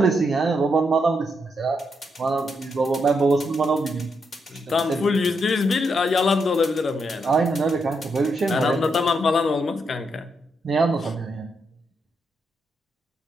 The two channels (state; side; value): normal; both; correlation 0.80